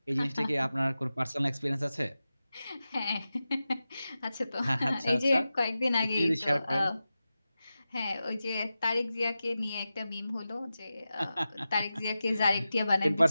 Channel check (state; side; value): inverted; both; correlation -0.93